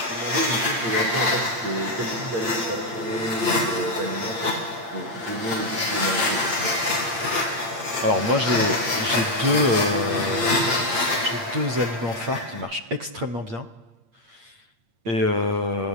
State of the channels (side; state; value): left; late; 8.7 ms